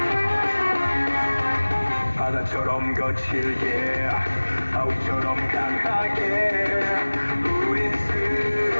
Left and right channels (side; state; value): both; inverted; correlation -1.00